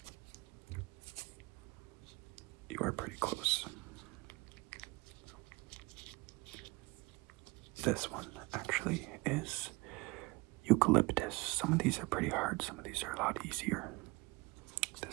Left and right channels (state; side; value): quieter; left; 24.4 dB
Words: You are pretty close. This one actually is eucalyptus. Some of these are pretty hard, some of these are a lot easier.